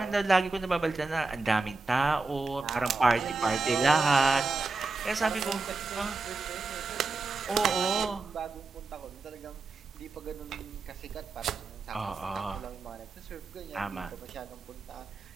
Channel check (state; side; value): quieter; left; 3.8 dB